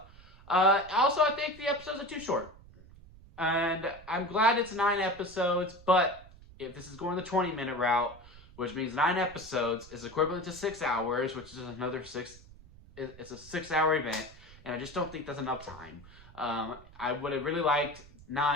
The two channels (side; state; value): right; noise; rumble, 21 dB below the sound